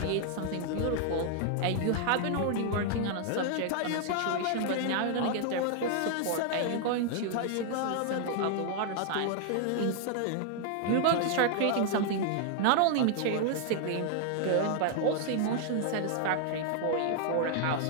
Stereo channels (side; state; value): both; different; correlation 0.00